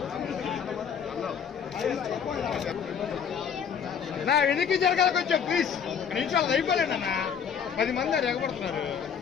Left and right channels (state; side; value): quieter; right; 7.4 dB